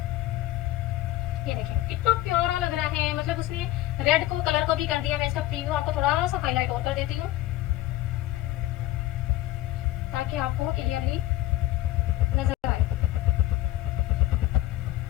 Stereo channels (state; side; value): quieter; right; 15.5 dB